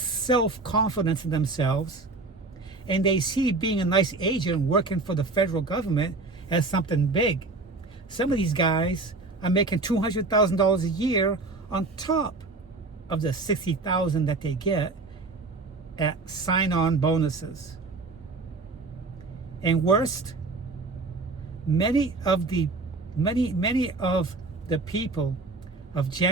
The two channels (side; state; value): left; quieter; 3.6 dB